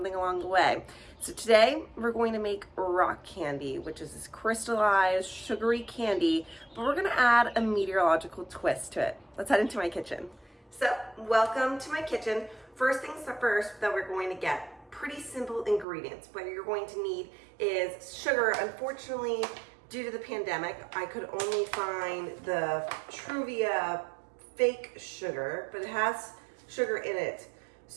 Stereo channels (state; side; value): drops out; left; at 15.9 s